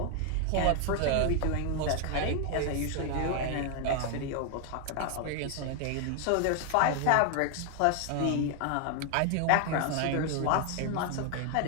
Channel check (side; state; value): both; different; correlation 0.00